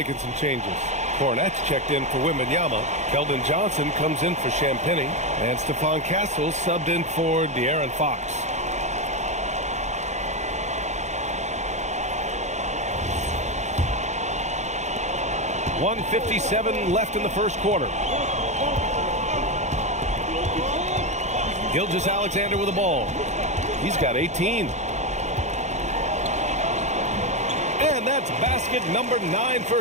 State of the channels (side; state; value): left; late; 0.33 ms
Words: some changes. Cornette's checked in for Wembanyama. Keldon Johnson comes in for Champagny. And Stephon Castle subbed in for De'Aaron Fox. .157 left in the first quarter. Gilgeous-Alexander with the ball. He's got 18. And that's basket number 9